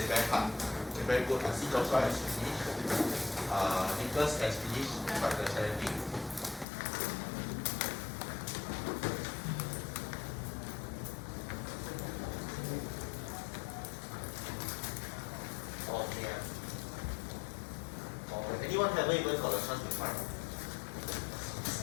very hard. Okay, very good. I see Joshua has finished. Nicholas has finished, but the challenging. Okay. Anyone haven't even got a chance to try?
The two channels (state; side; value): drops out; right; at 6.7 s